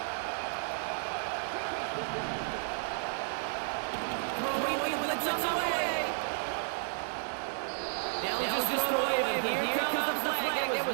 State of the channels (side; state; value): left; silent; digital silence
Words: Throwing with the blitz on the way. They'll just throw it away, but here comes the flag. There